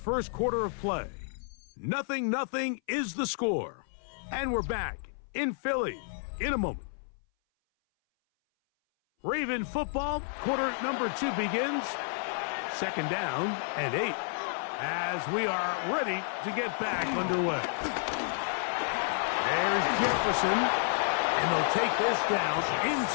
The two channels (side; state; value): right; silent; 57 dB below the other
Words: quarter of play. 0-0 is the score. And we're back in Philly in a moment. Raven football, quarter number 2 begins. Second down and 8 as we are ready to get back underway. There's Jefferson, and they'll take this down